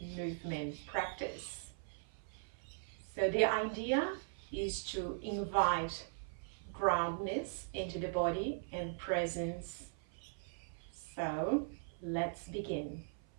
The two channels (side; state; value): left; silent; 51 dB below the other